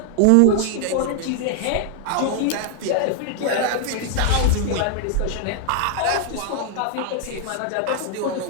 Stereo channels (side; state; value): both; different; correlation 0.00